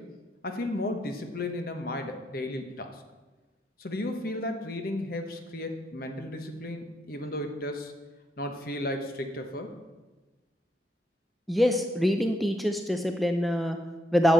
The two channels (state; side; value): normal; both; correlation 0.77